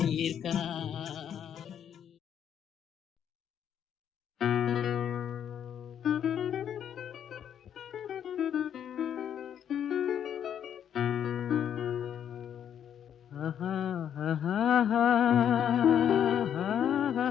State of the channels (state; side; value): quieter; right; 9.2 dB